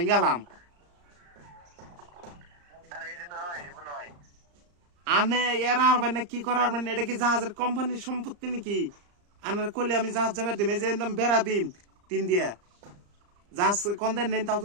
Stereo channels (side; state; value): left; late; 34 ms